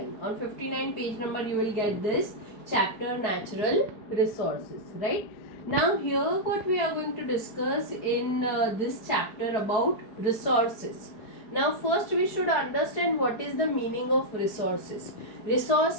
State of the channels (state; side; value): late; right; 4.6 ms